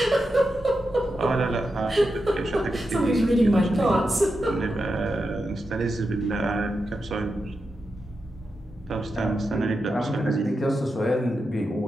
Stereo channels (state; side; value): normal; both; correlation 0.88